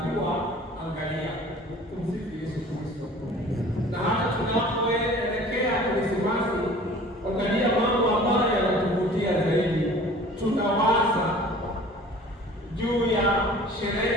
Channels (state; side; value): normal; both; correlation 0.46